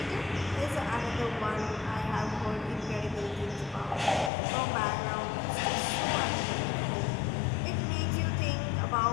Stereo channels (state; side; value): drops out; right; at 4.3 s